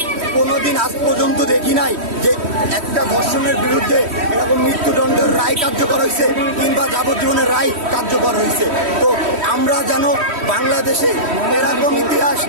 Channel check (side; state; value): left; late; 3.1 ms